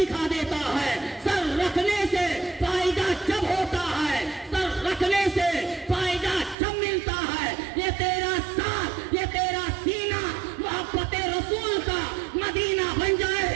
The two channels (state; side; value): drops out; left; at 6.6 s